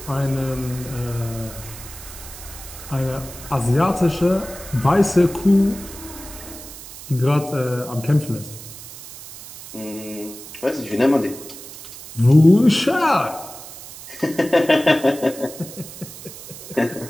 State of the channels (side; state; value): right; noise; hiss, 14 dB below the sound